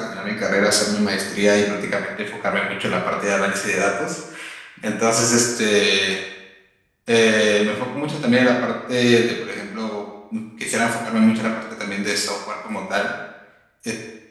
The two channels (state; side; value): identical; both; correlation 1.00